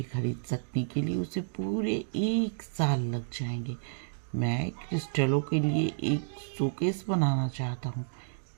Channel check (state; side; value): silent; left; digital silence